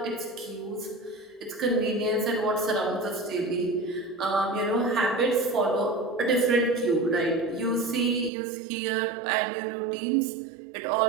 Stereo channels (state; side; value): drops out; left; at 8.3 s